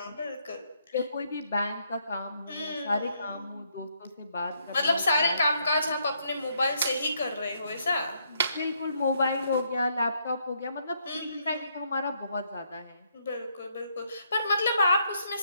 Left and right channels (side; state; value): both; inverted; correlation -0.73